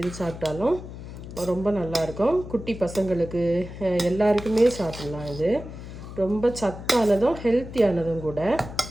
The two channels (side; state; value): left; noise; hum, 12 dB below the sound